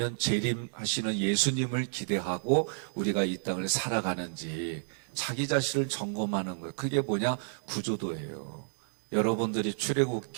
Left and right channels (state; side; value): silent; left; digital silence